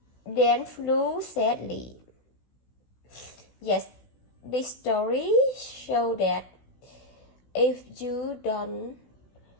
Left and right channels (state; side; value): late; right; 16 ms